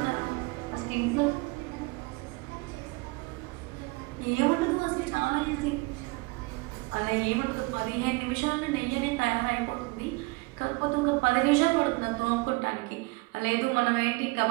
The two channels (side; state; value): left; quieter; 25.5 dB